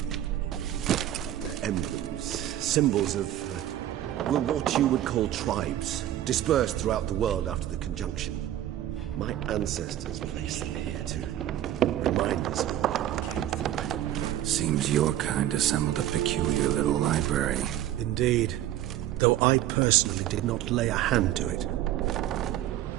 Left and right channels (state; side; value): quieter; left; 12.7 dB